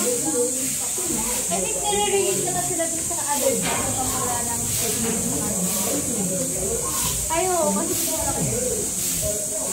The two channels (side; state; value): both; identical; correlation 1.00